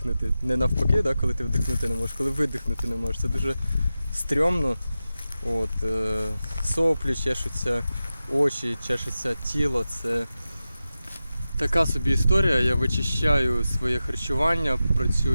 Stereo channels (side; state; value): both; inverted; correlation -0.93